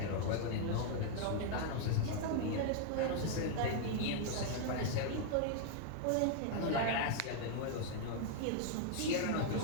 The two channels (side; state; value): both; different; correlation 0.00